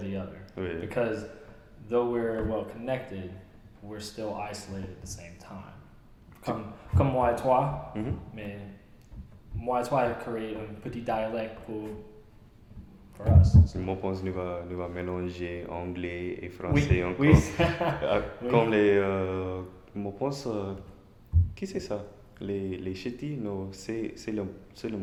other. Oui. Because though we're well connected, we're still isolated at the same time. Comme moi et toi, Mhm. mais moi et toi créer un petit dialecte pour us. Moi, je pense que nous va mélanger anglais et Oui, français encore. oui. Oui. Comme les. Moi, je pense. Qui c'est ça? Les ch'tis, non, c'est le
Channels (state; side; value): identical; both; correlation 1.00